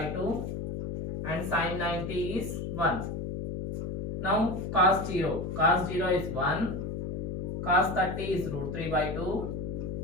2 and sine 90 is 1. Now cos 0 is 1, cos 30 is root 3 by 2,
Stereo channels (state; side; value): noise; left; hum, 4 dB below the sound